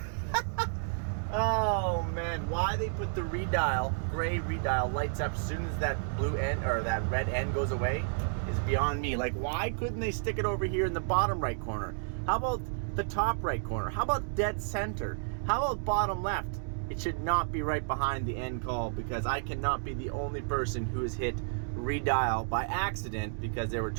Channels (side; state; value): left; silent; digital silence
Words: Oh man, why they put the redial, gray redial, lights up as soon as that blue end or that red end goes away is beyond me. Like, why couldn't they stick it over here in the bottom right corner? How about the top right corner? How about dead center? How about bottom left? It should not be right behind the end call, because I cannot be the only person who has hit redial by accident because they were